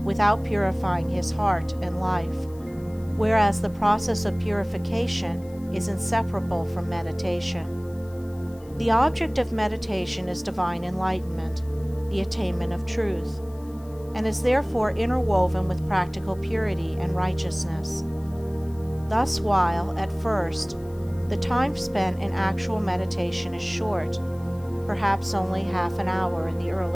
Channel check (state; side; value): noise; left; hiss, 27 dB below the sound